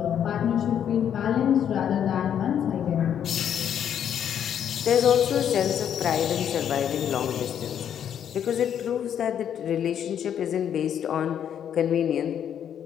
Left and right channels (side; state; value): right; quieter; 9.2 dB